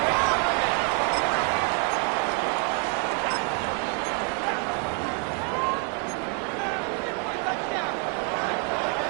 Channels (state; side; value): quieter; left; 33.8 dB